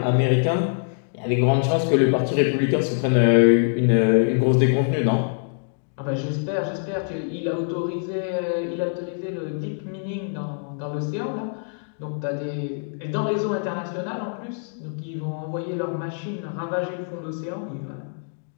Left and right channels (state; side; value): silent; right; digital silence